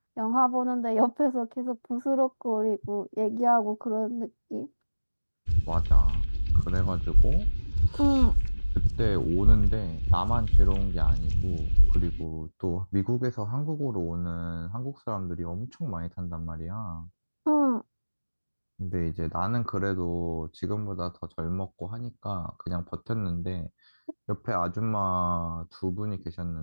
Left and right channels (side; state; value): both; inverted; correlation -1.00